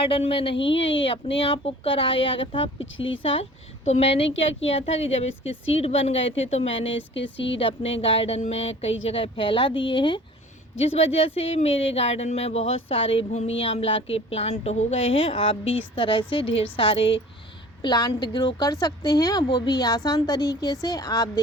में नहीं है, ये अपने आप उग कर आया था पिछली साल। तो मैंने क्या किया था कि जब इसके सीड बन गए थे तो मैंने इसके सीड अपने गार्डन में कई जगह फैला दिए हैं, जिस वजह से मेरे गार्डन में बहुत सारे भूमि आंवला के प्लांट हो गए हैं। आप भी इस तरह से ढेर सारे प्लांट ग्रो कर सकते हैं, वो भी आसान तरीके से। आप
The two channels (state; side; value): normal; both; correlation 0.45